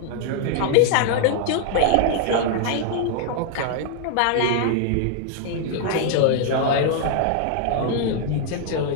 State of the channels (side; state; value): both; different; correlation 0.00